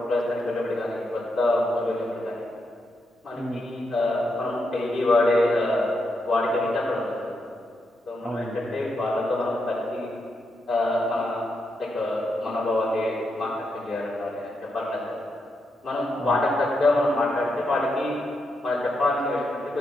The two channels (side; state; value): both; normal; correlation 0.82